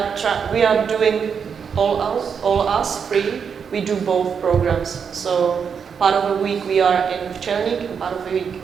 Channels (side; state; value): left; quieter; 6.7 dB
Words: are doing all us free. We do both programs. So part of the week we are in Včelník and part of the week